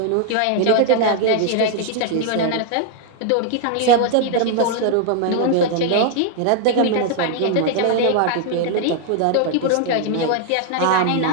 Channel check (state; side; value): different; both; correlation 0.00